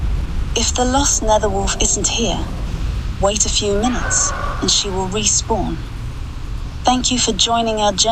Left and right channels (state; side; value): identical; both; correlation 1.00